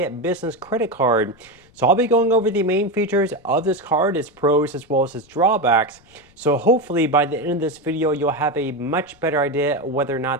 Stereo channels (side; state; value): left; noise; rumble, 29 dB below the sound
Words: Business Credit Card. So I'll be going over the main features of this card, its pros as well as its drawbacks. So hopefully by the end of this video, you'll have a much better idea whether or